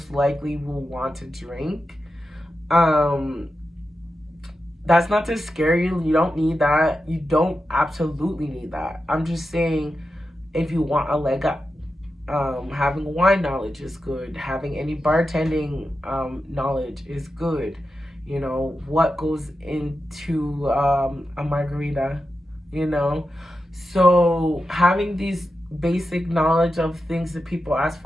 likely will want to drink. That's not to scare you. You don't need that. You don't absolutely need that. I'm just saying, if you want a leg up, having wine knowledge is good. Having any bartending knowledge is good. You know, what goes into a margarita, you know? So having these basic knowledge of things that people ask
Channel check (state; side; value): normal; both; correlation 0.90